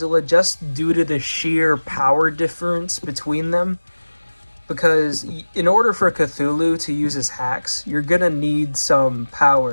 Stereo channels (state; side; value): inverted; both; correlation -1.00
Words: just due to the sheer power difference between them. Because in order for Cthulhu to use his hacks, you're gonna need some